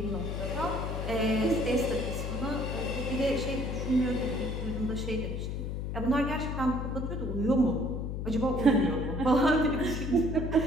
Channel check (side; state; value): left; noise; hum, 3 dB below the sound